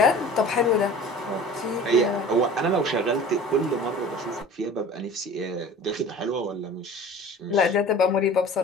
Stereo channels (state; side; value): normal; both; correlation 0.42